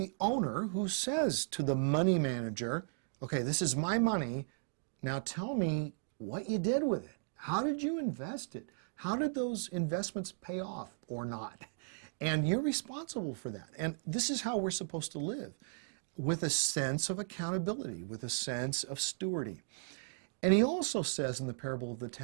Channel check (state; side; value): silent; left; digital silence